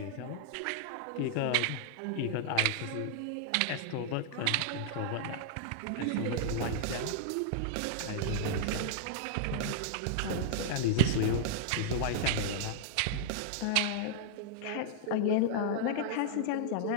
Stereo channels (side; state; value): both; different; correlation -0.01